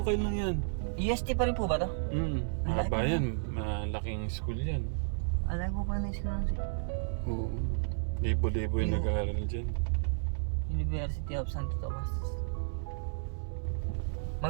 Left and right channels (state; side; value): silent; left; 56 dB below the other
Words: lang yan. UST pa rin po ba to? Mahaba yan. Malaking school yan. Alay ko pa na yung school siya. Oo. Libo-libo yung nag-aaral dyan. University of Santo Tomas.